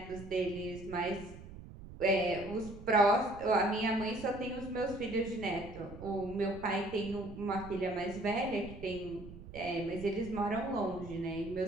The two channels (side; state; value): right; noise; rumble, 15 dB below the sound